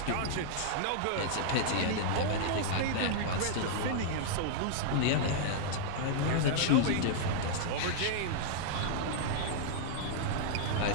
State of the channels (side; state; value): both; different; correlation -0.01